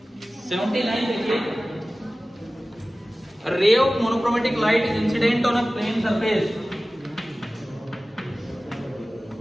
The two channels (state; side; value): normal; both; correlation 0.97